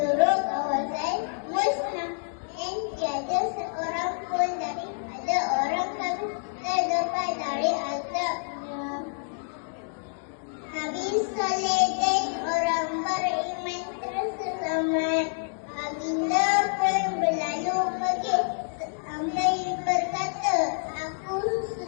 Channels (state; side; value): silent; right; digital silence